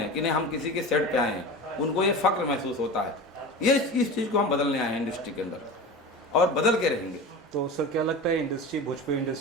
कि नहीं हम किसी के सेट पे आए हैं, उनको ये फक्र महसूस होता है। ये इस चीज़ को हम बदलने आए हैं इंडस्ट्री के अंदर, और बदल के रहेंगे। तो सर क्या लगता है इंडस्ट्री, भोजपुरी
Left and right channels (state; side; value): normal; both; correlation 0.31